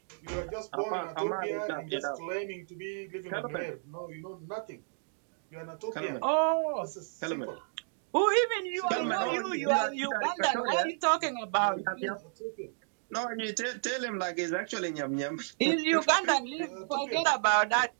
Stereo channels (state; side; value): silent; left; digital silence